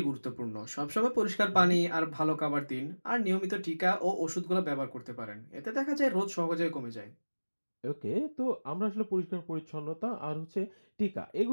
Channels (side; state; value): both; inverted; correlation -1.00